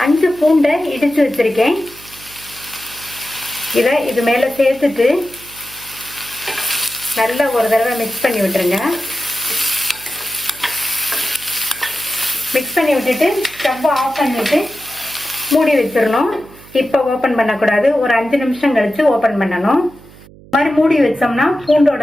5 பூண்டை இடித்து வச்சுருக்கேன். இதை இது மேலே சேர்த்துட்டு நல்லா ஒரு தடவை மிக்ஸ் பண்ணி விட்டுருங்க. மிக்ஸ் பண்ணி விட்டுட்டு ஸ்டவ்வை ஆஃப் பண்ணிவிட்டு மூடி வச்சிடணும். இப்போ ஓப்பன் பண்ணக்கூடாது. ஒரு 5 நிமிஷம் கழித்து ஓப்பன் பண்ணணும். இந்த மாதிரி மூடி வச்சோம்னா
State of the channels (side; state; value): right; noise; hum, 22 dB below the sound